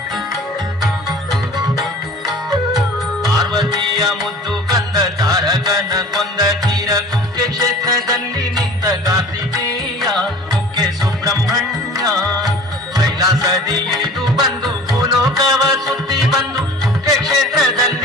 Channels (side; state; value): both; normal; correlation 0.43